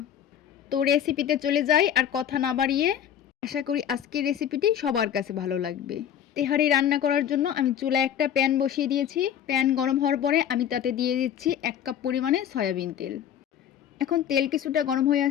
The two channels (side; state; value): right; quieter; 9.6 dB